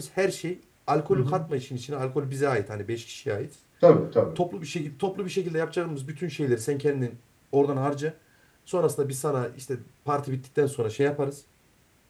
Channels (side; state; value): both; identical; correlation 1.00